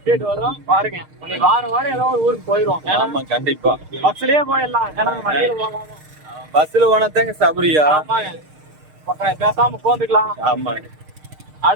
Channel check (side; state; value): left; late; 6.5 ms